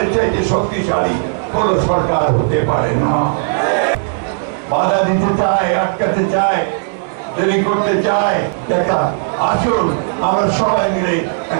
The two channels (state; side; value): silent; left; digital silence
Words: চাইতে শক্তিশালী কোন সরকার হতে পারে না। বাধা দিতে চায়, আটকাতে চায়, দেরি করতে চায়। দেখা আসুন আমরা সবাই মিলে